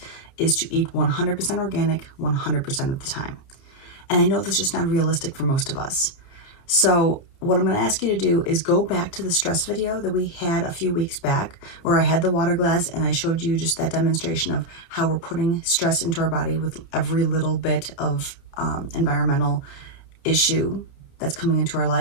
is to eat 100% organic 100% of the time. And I know this is just not realistic for most of us. So what I'm going to ask you to do is go back to the stress video that we had a few weeks back, where I had the water glass and I showed you just that demonstration of how we're putting stress into our body with every little bit of environmental issue that's coming into our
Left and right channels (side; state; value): right; late; 30 ms